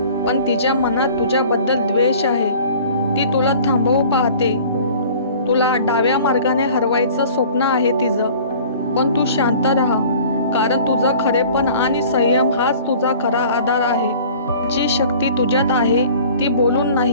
पण तिच्या मनात तुझ्याबद्दल द्वेष आहे। ती तुला थांबवू पाहते, तुला डाव्या मार्गाने हरवायचं स्वप्न आहे तिचं। पण तू शांत राहा, कारण तुझं खरेपण आणि संयम हाच तुझा खरा आधार आहे। जी शक्ती तुझ्यात आहे ती बोलून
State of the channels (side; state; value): both; inverted; correlation -0.47